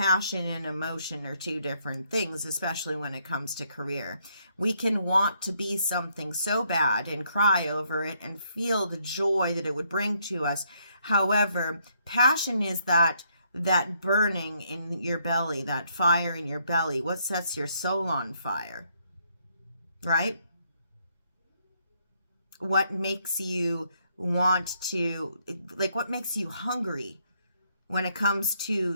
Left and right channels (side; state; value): both; inverted; correlation -0.71